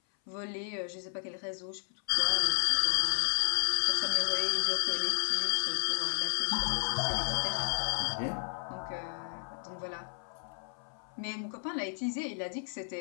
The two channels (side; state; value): right; silent; 56 dB below the other